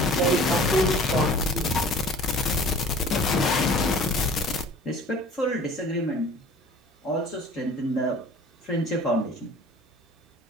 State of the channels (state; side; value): normal; both; correlation 0.46